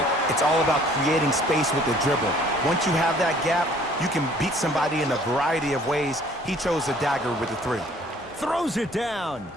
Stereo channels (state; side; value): normal; both; correlation 0.56